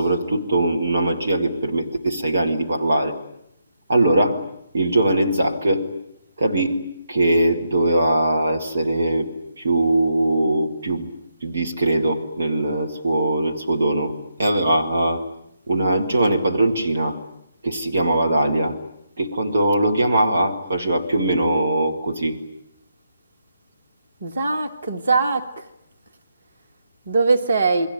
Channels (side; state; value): both; inverted; correlation -0.81